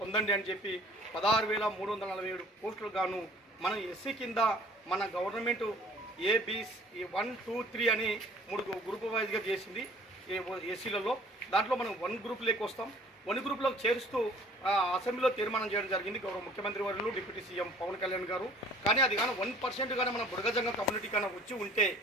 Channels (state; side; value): normal; both; correlation 0.52